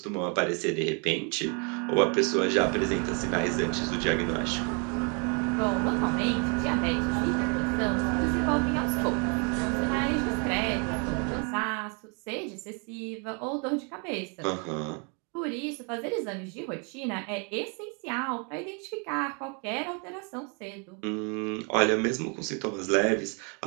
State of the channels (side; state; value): left; quieter; 35.8 dB